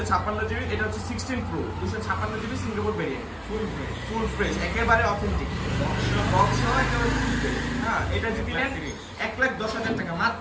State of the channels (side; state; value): both; identical; correlation 1.00